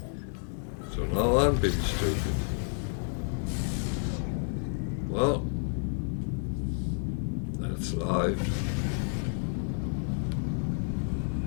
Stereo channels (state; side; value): silent; right; 58 dB below the other